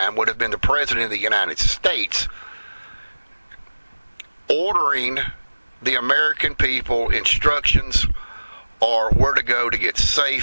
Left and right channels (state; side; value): inverted; both; correlation -1.00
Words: would have been the President of the United States, ordering the American people instructions or where to go to get